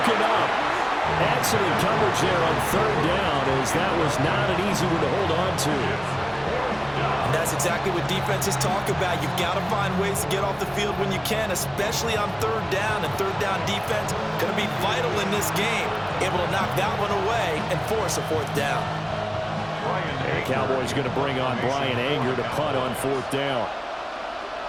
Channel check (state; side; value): identical; both; correlation 1.00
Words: up. Excellent coverage there on 3rd down, as that was not an easy one to hold on to. And that's exactly what defenses talk about. You've got to find ways to get off the field when you can, especially on 3rd down. And 3rd down defense going to be vital in this game. Able to knock that one away and force a 4th down. And the Cowboys going to bring on Brian Anger to punt on 4th down.